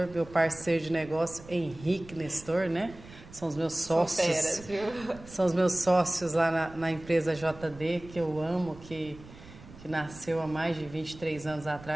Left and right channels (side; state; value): right; noise; rumble, 18 dB below the sound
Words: meu parceiro de negócio, Henrique Nestor, né? São os meus sócios. São feras, viu? São os meus sócios lá na empresa JD, que eu amo, que nasceu há mais de 23 anos